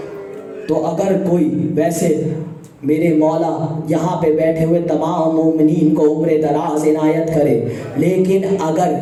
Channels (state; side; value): identical; both; correlation 1.00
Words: تو اگر کوئی ویسے میرے مولا یہاں پہ بیٹھے ہوئے تمام مومنین کو عمر دراز عنایت کرے، لیکن اگر